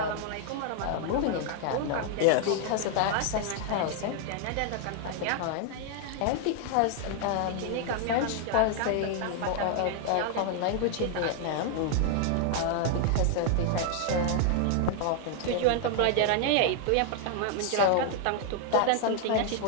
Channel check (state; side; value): different; both; correlation 0.00